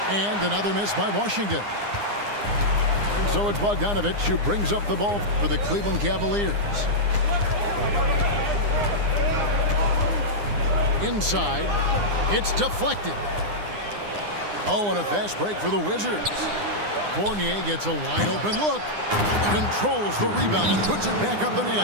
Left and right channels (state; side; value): late; left; 9.8 ms